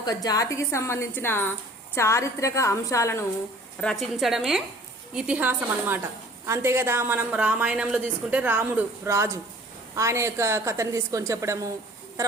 జాతికి సంబంధించిన చారిత్రక అంశాలను రచించడమే ఇతిహాసం అన్నమాట. అంతే కదా. మనం రామాయణంలో తీసుకుంటే రాముడు రాజు, ఆయన యొక్క కథను తీసుకొని చెప్పడము,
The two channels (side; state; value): both; normal; correlation 0.51